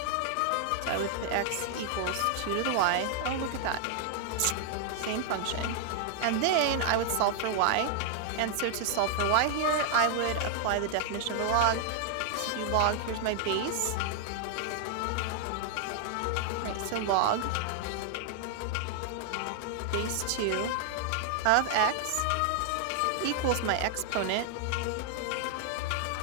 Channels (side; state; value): both; different; correlation 0.00